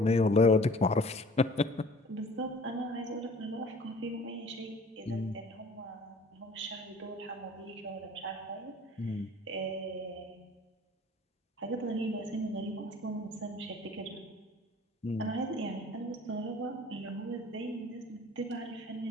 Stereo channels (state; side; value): normal; both; correlation 0.49